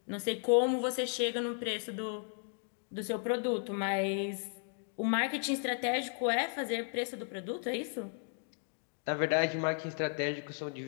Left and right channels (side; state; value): right; silent; 55 dB below the other